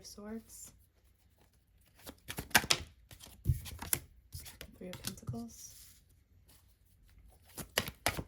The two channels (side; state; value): both; identical; correlation 1.00